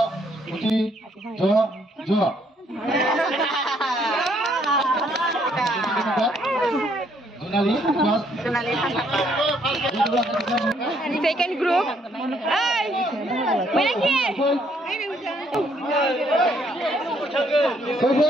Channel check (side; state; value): both; normal; correlation 0.68